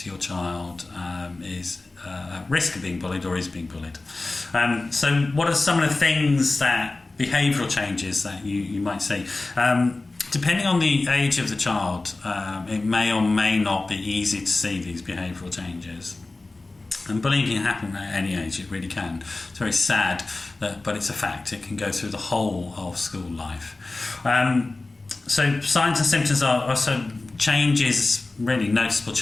your child is at risk of being bullied or is being bullied. So what are some of the things behavioural changes that you might see? Depending on the age of the child, it may or may not be easy to see these behavioural changes. And bullying can happen at any age, it really can. It's very sad, but it's a fact. It can go through the whole of school life. So signs and symptoms are also changes, really noticeable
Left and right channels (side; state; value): right; quieter; 3.2 dB